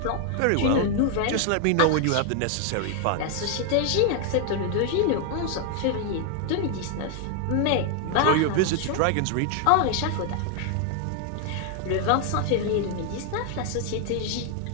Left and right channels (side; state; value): both; different; correlation 0.00